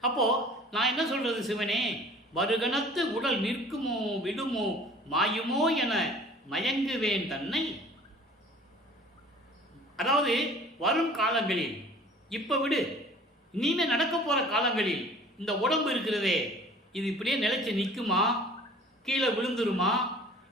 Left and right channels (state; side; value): normal; both; correlation 0.48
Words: அப்போது நான் என்ன சொல்கிறது, சிவனே, வருகணத்து உடல் நிற்குமோ விடுமோ மாயுமோ என மயங்குவேன் தன்னை. அதாவது வரும் காலங்களில், இப்போ விடு, இனிமே நடக்க போகிற காலங்களில் இந்த உடம்பு இருக்கிறதே, இது இப்படியே நிலைச்சு நிற்குமா, கீழே விழுந்துருமா,